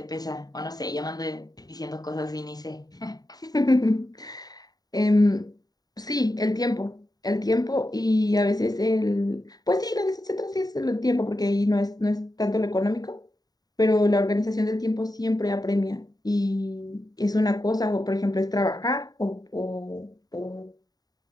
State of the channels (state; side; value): late; right; 0.18 ms